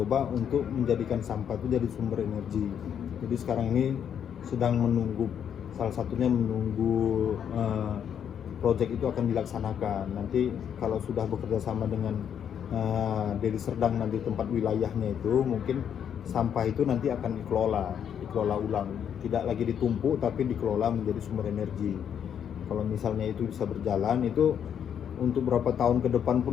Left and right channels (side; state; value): right; quieter; 8.6 dB